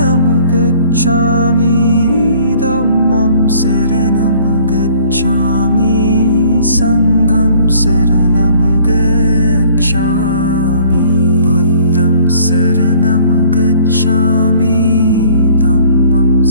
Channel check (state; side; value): inverted; both; correlation -0.55